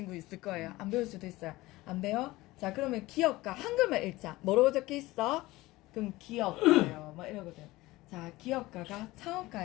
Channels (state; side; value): quieter; right; 19.1 dB